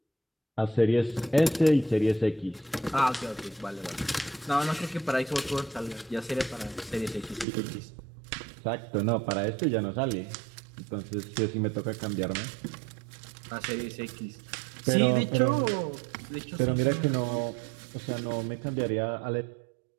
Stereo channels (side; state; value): left; drops out; at 7.5 s